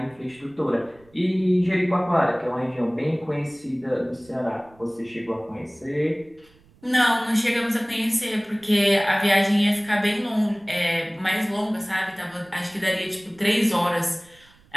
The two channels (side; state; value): right; noise; rumble, 29 dB below the sound